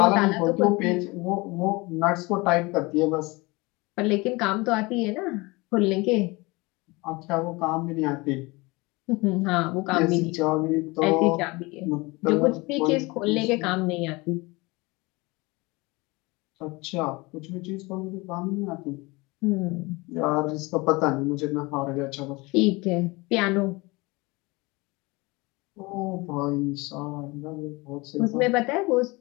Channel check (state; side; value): quieter; right; 24.3 dB